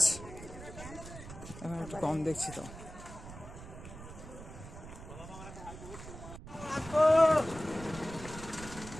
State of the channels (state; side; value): noise; right; rumble, 13 dB below the sound